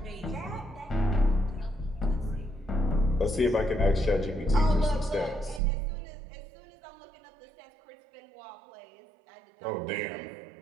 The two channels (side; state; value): left; drops out; at 5.6 s